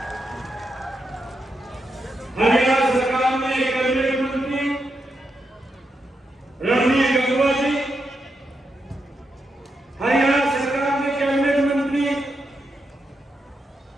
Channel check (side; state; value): both; normal; correlation 0.84